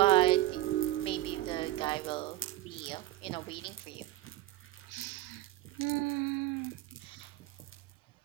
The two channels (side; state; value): left; quieter; 15.5 dB